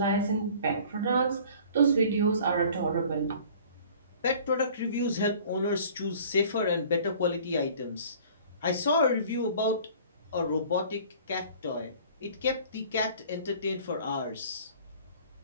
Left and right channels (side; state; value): both; inverted; correlation -0.48